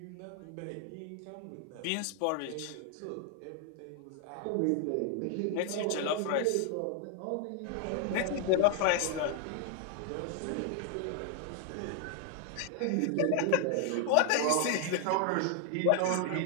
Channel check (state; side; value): different; both; correlation 0.00